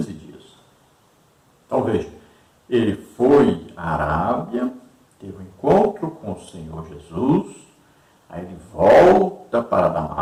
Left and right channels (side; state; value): both; identical; correlation 1.00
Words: dias. Então veja, ele foi à Arábia, teve um encontro com o Senhor Jesus, aí ele volta para